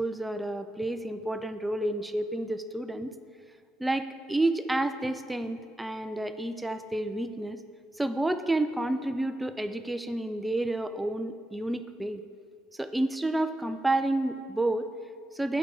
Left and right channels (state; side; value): normal; both; correlation 0.90